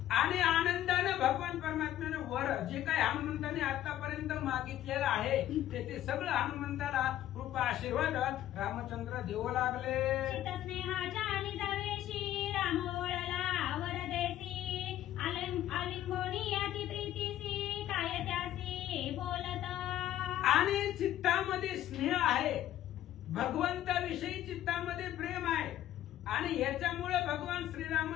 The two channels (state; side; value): quieter; right; 12.7 dB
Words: आणि आनंदानं भगवान परमात्म्यानं वर जे काही हनुमंताने आतापर्यंत मागितलेलं आहे ते सगळं हनुमंताला कृपा आशीर्वाद रामचंद्र देऊ लागले. चित्तस्नेहाच्या निजावेशी राम ओळला वरदेसी आलिंगोनी अति प्रीतीसी काय त्यासी बोलत. आणि चित्तामध्ये स्नेह आहे, भगवंताविषयी चित्तामध्ये प्रेम आहे आणि याच्यामुळे भगवान